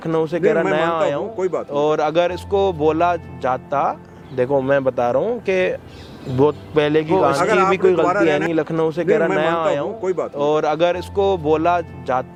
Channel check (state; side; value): identical; both; correlation 1.00